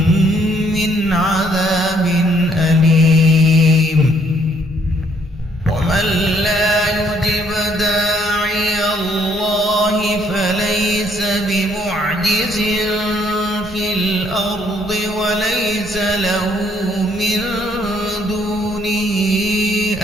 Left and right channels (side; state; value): both; normal; correlation 0.66